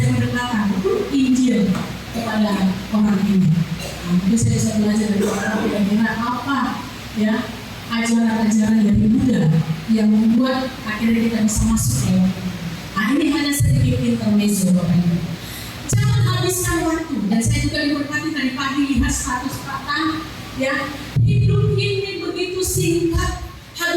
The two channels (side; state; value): both; identical; correlation 1.00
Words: berdekatan Injil kepada orang ini. Mungkin saya bisa belajar dari orang kira-kira apa ya ajaran-ajaran dari Buddha yang membuat akhirnya kita bisa masuk ya. Nah ini hanya sedikit intermezzo Bapak Ibu. Jangan habiskan waktu. Dan saya juga diberkati tadi pagi lihat status Pak ya, hidup ini begitu singkat.